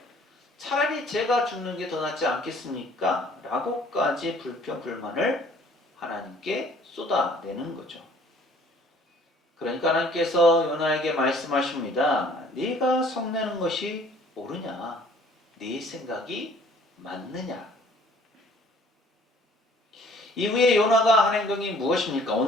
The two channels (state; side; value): normal; both; correlation 0.56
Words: 차라리 제가 죽는 게 더 낫지 않겠습니까? 라고까지 불평불만을 하나님께 쏟아내는 거죠. 그러니까 하나님께서 요나에게 말씀하십니다. 네가 성내는 것이 옳으냐? 네 생각이 맞느냐? 이후에 요나가 한 행동이 무엇입니까?